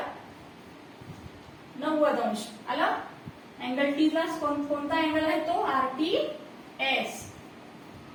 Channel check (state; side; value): identical; both; correlation 1.00